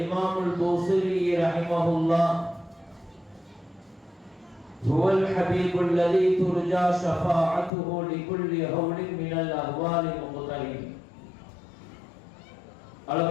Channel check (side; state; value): right; drops out; at 7.7 s